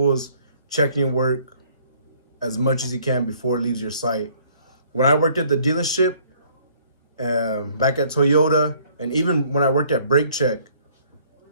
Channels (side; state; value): both; inverted; correlation -0.60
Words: as checking your work as much as you can before it leaves your site. When I worked at the dealership, back at Toyota, and even when I worked at Brake Check,